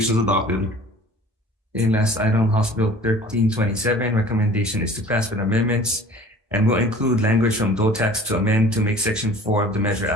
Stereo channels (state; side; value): normal; both; correlation 0.47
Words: adopted. Okay, last item, House Bill 1327, recommendation is to pass with amendments and will include language from DOE tax to amend to make section 4 of the measure